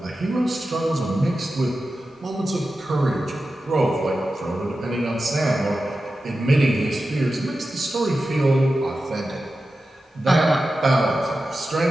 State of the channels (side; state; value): both; normal; correlation 0.93